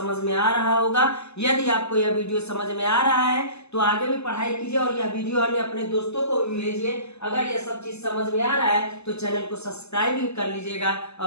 में आ रहा होगा। यदि आपको यह वीडियो समझ में आ रहा है तो आगे भी पढ़ाई कीजिए और यह वीडियो अन्य अपने दोस्तों को भी भेजिए। अगर यह सब चीज समझ में आ रहा है तो चैनल को सब्सक्राइब भी कर लीजिएगा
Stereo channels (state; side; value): late; right; 0.80 ms